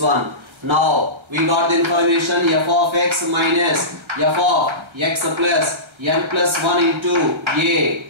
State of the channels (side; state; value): left; late; 1.4 ms